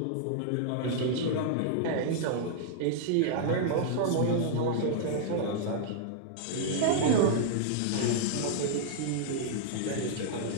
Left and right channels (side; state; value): both; different; correlation -0.01